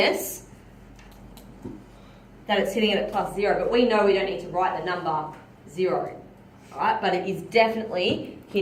that it's hitting it at plus 0. But we know we don't need to write the number 0. Alright, but it is definitely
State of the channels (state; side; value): identical; both; correlation 1.00